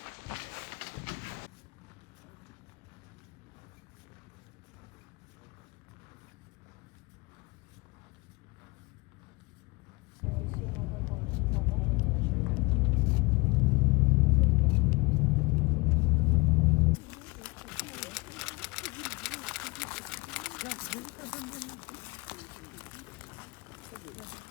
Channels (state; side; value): quieter; right; 25.5 dB